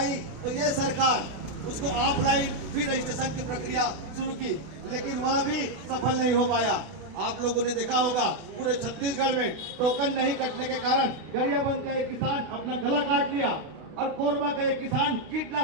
तो ये सरकार उसको ऑफलाइन भी रजिस्ट्रेशन की प्रक्रिया शुरू की, लेकिन वह भी सफल नहीं हो पाया। आप लोगों ने देखा होगा पूरे छत्तीसगढ़ में टोकन नहीं कटने के कारण गरियाबंद का एक किसान अपना गला काट लिया और कोरबा का एक किसान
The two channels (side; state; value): left; late; 32 ms